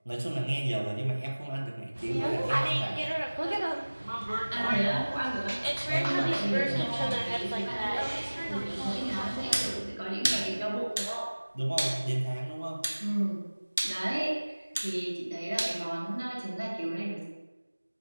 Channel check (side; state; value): both; inverted; correlation -1.00